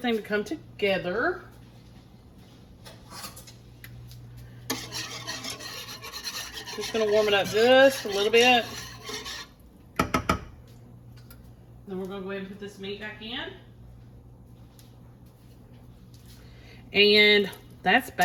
to come together. Just gonna warm it up just a little bit. Then we're gonna go ahead and put this meat back in. And that's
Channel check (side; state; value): both; identical; correlation 1.00